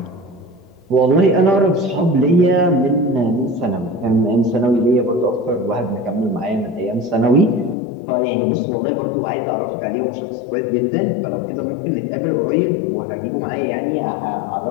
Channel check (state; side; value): drops out; right; at 7.8 s